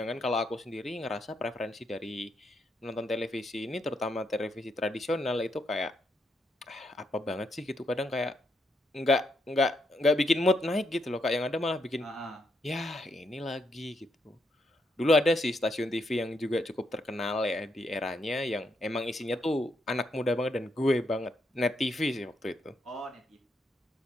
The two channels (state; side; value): normal; both; correlation 0.78